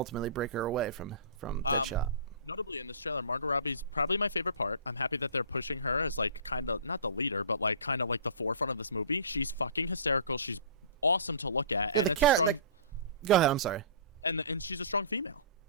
break her away from Deadshot. Notably in this trailer, Margot Robbie's probably my favorite part. I'm happy that they're pushing her as like kind of not the leader, but like kind of like the forefront of this movie. She's fucking hysterical. She's awesome to look at, and it's a strong. Go ahead. I'm sorry. And she's a strong female.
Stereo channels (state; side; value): inverted; both; correlation -0.40